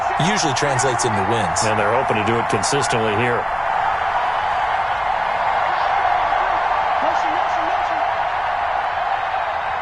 usually translates into wins. And they're hoping to do it consistently here.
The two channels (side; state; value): both; identical; correlation 1.00